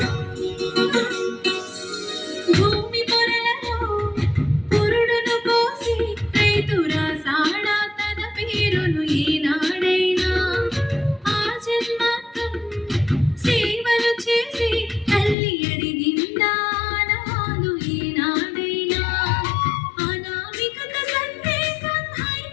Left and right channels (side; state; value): right; drops out; at 15.4 s